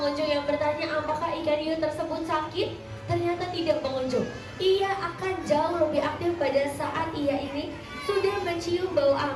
yang bertanya apakah ikan hiu tersebut sakit. Ternyata tidak pengunjung. Ia akan jauh lebih aktif pada saat ia ini sudah mencium bau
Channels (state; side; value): identical; both; correlation 1.00